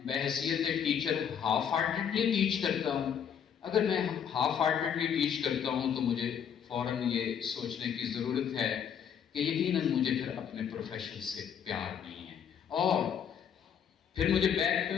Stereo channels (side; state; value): right; quieter; 8.1 dB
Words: بحیثیت ٹیچر ہاف ہارٹیڈلی ٹیچ کرتا ہوں؟ اگر میں ہاف ہارٹیڈلی ٹیچ کرتا ہوں تو مجھے فوراً یہ سوچنے کی ضرورت ہے کہ یقیناً مجھے پھر اپنے پروفیشن سے پیار نہیں ہے. اور پھر مجھے بیک پہ